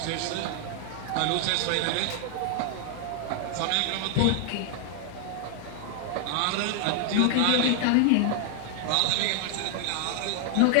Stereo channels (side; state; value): both; different; correlation 0.00